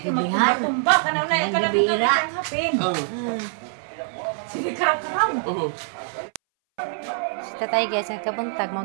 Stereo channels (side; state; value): left; silent; 60 dB below the other